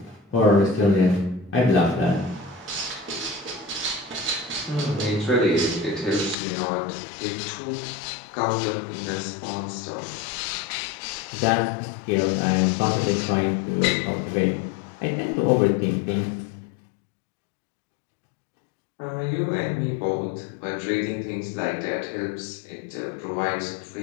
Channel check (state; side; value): drops out; right; at 6.4 s